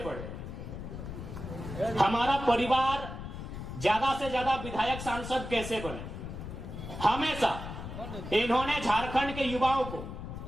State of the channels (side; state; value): left; noise; rumble, 8 dB below the sound